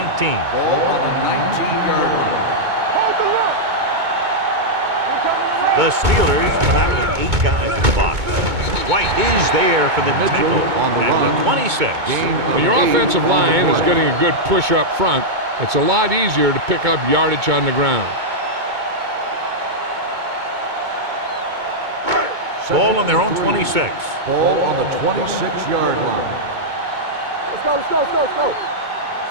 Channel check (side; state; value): left; late; 2.2 ms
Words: Ball on the 19-yard line. The Steelers come out with 8 guys in the box. White is there for the tackle at the 26. When your offensive line is getting a good push up front, it's a lot easier to pick up yardage on the ground. Ball on their own 26. Ball on the 26-yard line. Let's go, let's go, let's go, let's go.